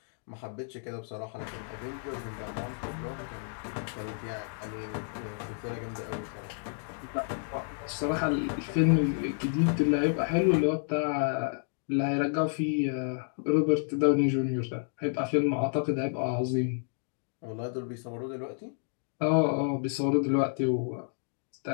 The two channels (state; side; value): silent; right; 57 dB below the other